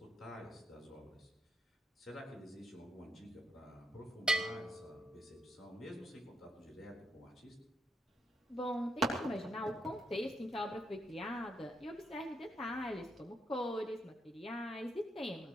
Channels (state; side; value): normal; both; correlation 0.79